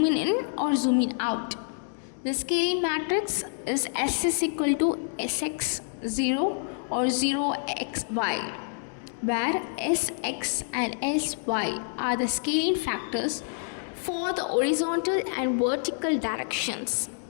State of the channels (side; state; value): right; silent; digital silence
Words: in or zooming out. The scaling matrix is S is equal to Sx0 or 0xy, where Sx and Sy are the scaling factors for the horizontal and vertical directions.